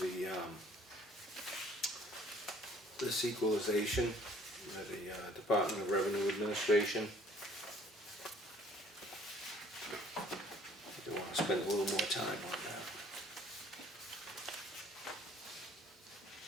this equalization by the Department of Revenue Administration. I want to spend a little more time on that.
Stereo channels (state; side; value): normal; both; correlation 0.57